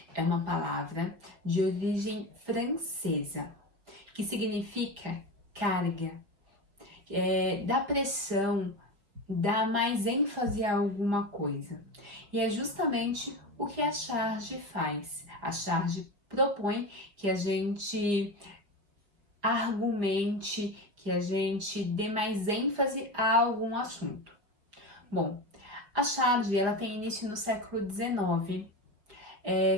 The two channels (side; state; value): left; late; 5.2 ms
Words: é uma palavra de origem francesa que significa carga, dá pressão, dá mais ênfase a alguma coisa. E é justamente o que a charge faz. A charge propõe que a gente argumente, que a gente dê mais ênfase a algum assunto. Bom, a charge ela tem início no século XIX,